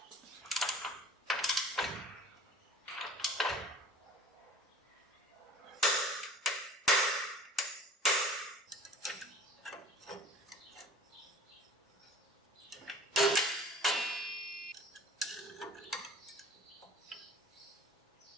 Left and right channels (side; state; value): both; normal; correlation 0.45